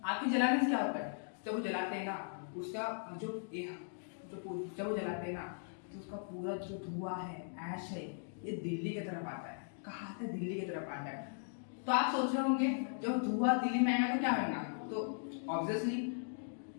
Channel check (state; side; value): silent; right; digital silence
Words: आपके जलाने से क्या होता है, जब वो जलाते हैं ना, उसका जो जब वो जलाते हैं ना, तो उसका पूरा जो धुआं है, ऐश है, ये दिल्ली की तरफ आता है। कहाँ आता है, दिल्ली की तरफ आता है। तो आप सोच रहे होंगे जब धुआं दिल्ली में आएगा तो क्या होगा, तो ऑब्वियसली